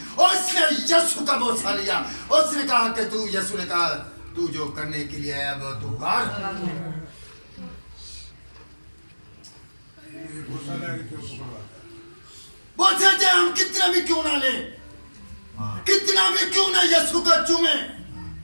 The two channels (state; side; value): inverted; both; correlation -1.00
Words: उसने यीशु का बोसा लिया। उसने कहा कि तू, यीशु ने कहा तू जो करने के लिए आया वो तू कर। बोलते थे हम कितना भी क्यों ना ले, कितना भी क्यों ना यीशु का चूमे,